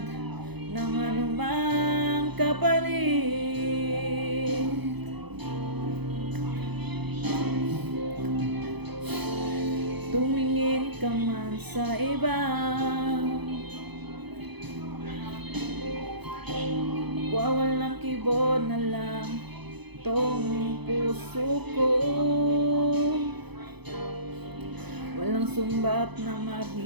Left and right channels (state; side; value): late; left; 0.98 ms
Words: ng anumang kapalit. Tumingin ka man sa iba, wawalang kibo na lang tong puso ko. Walang sumbat na